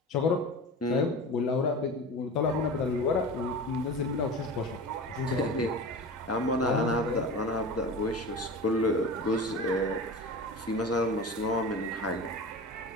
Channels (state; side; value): normal; both; correlation 0.32